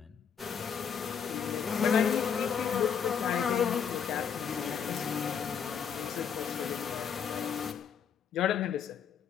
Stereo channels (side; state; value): right; quieter; 7.3 dB